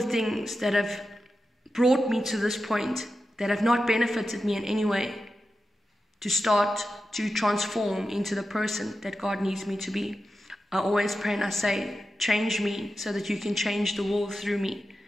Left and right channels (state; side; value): normal; both; correlation 0.91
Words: things that have brought me to this point, that have not benefited me in any way, to start to transform into the person that God needs me to be. I always pray and I say, change me so that you can change the world through me.